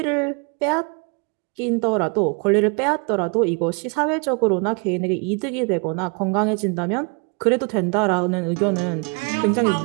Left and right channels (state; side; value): quieter; left; 34.6 dB